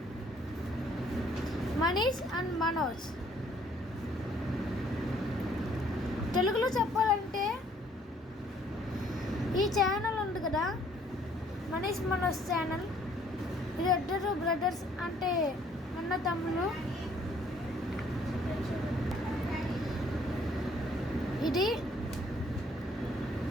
Manish and Manoj. తెలుగులో చెప్పాలంటే ఈ channel ఉంది కదా, Manish Manoj channel. ఇది ఇద్దరు brothers, అంటే అన్న తమ్ముళ్ళు. ఇది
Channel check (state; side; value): normal; both; correlation 0.61